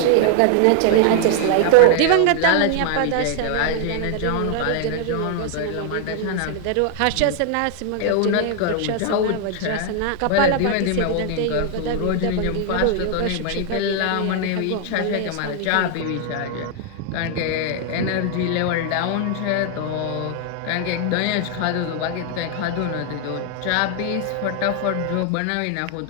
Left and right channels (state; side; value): different; both; correlation 0.00